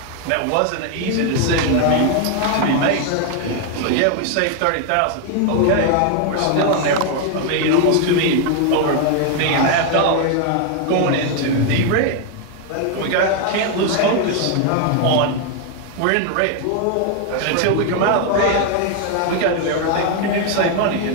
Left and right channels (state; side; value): different; both; correlation 0.01